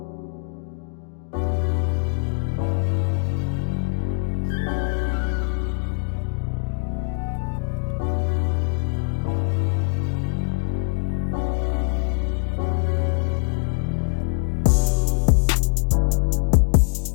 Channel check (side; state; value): right; silent; 63 dB below the other